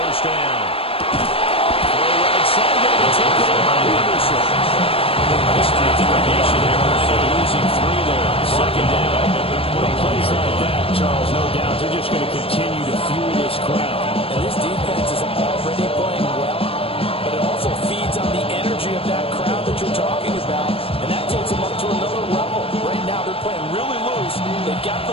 down. Throw right side, going to take it in by Anderson. Nice determination there, losing 3 there. Second down. With plays like that, Charles, no doubt, they're just going to continue to fuel this crowd. And this defense is already playing well, but it also feeds on the energy of that crowd that you're talking about, and that takes them up to another level. Right now, they're playing really loose. They've got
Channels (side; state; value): right; late; 0.27 ms